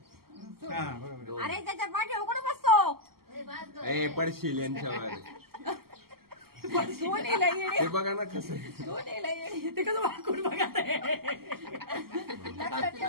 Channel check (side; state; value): left; late; 0.94 ms